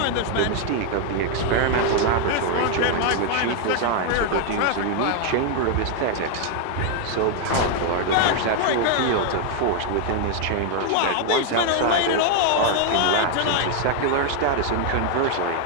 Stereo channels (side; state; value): both; different; correlation 0.00